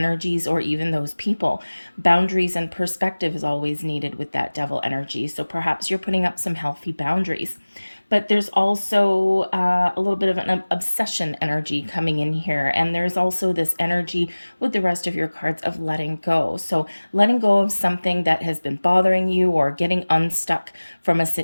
or even those people. Boundaries and perspective is always needed with that Devil energy. So perhaps you're putting up some healthy boundaries. But there's also a little bit of an obsession energy coming in here. And there's also this energy with the rest of your cards of letting go. So letting go of something that has been bothering you or getting unstuck from a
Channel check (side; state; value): both; inverted; correlation -1.00